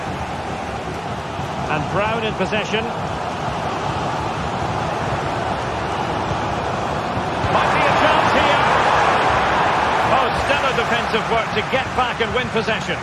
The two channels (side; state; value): both; identical; correlation 1.00